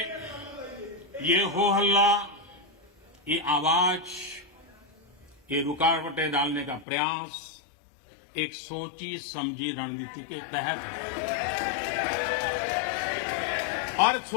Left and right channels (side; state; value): right; drops out; at 6.9 s